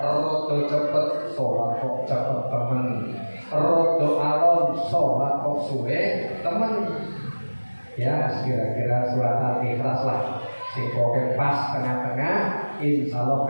cepet sholat kok cepet temen, rodo alon sholat kok suwe temen. Ya kira-kira surat Al-Ikhlas lah. Sing pokoke pas tengah-tengah, insyaallah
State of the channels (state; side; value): inverted; both; correlation -1.00